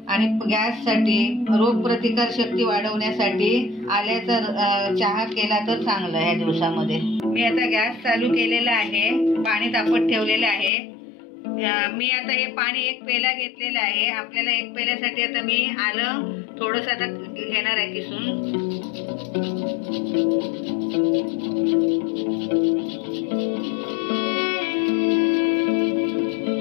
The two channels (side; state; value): right; drops out; at 10.7 s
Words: आणि गॅससाठी, रोगप्रतिकार शक्ती वाढवण्यासाठी आल्याचा चहा केला तर चांगलं या दिवसामध्ये। मी आता गॅस चालू केलेला आहे, पाणी तापत ठेवलेलं आहे। मी आता हे पाणी 1 पेला घेतलेलं आहे। आपल्याला 1 पेल्यासाठी आता मी आलं थोडंसं आता घेणार आहे किसून।